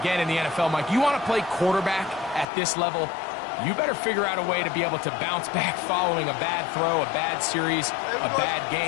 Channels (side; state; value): right; drops out; at 2.5 s